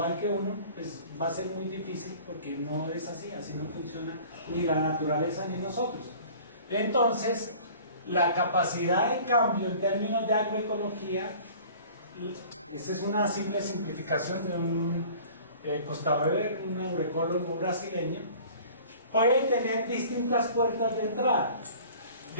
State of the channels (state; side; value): inverted; both; correlation -0.46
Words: que uno, pues va a ser muy difícil porque no es así, así no funciona ni la naturaleza ni nosotros. Entonces, la capacidad de cambio en términos de agroecología, esta es una simple simplificación de un Costa Weber, un agroecólogo brasileño, puede tener distintas puertas de entrada,